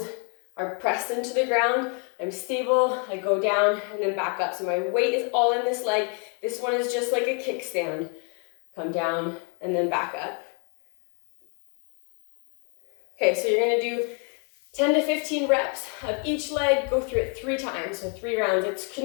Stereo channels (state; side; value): quieter; right; 37.5 dB